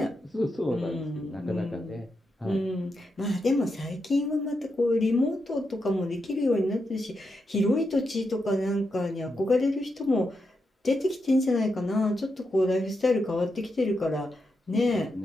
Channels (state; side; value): normal; both; correlation 0.85